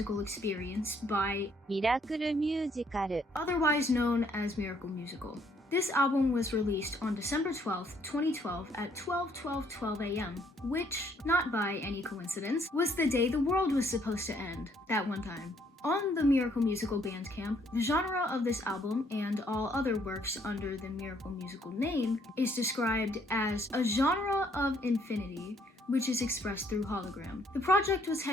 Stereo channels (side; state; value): both; normal; correlation 0.67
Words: experience by Miracle Musical, otherwise known as Miracle Musical. This album was released on December 12th, 2012 at 12 a.m., which, not by any coincidence, was the day the world was supposed to end, that one time. On the Miracle Musical Bandcamp, the genre of this album and all other works under the Miracle Musical name is described as a genre of infinity, which is expressed through hologram. The project was